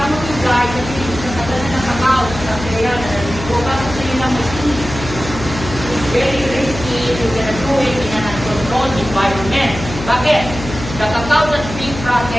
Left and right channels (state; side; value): noise; left; hum, 10 dB below the sound